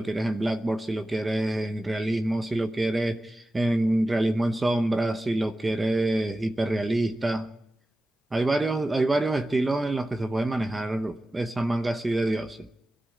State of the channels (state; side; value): normal; both; correlation 0.95